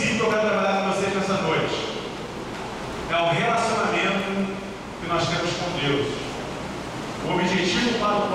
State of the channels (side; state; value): both; identical; correlation 1.00